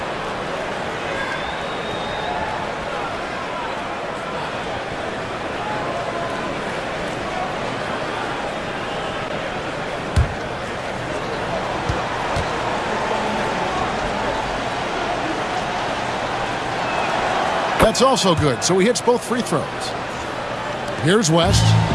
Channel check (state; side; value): identical; both; correlation 1.00